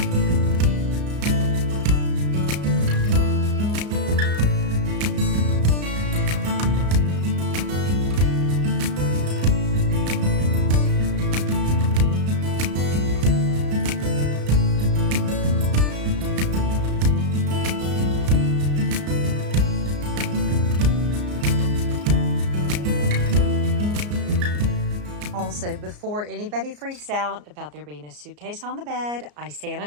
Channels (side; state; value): left; late; 34 ms